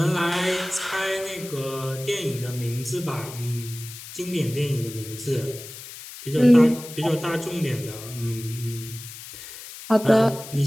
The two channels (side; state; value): left; noise; hiss, 13 dB below the sound